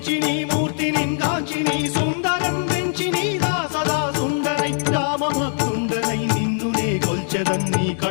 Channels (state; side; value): silent; right; 65 dB below the other